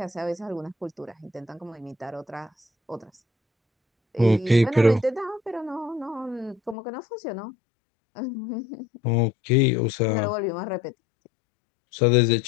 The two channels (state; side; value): drops out; right; at 6.8 s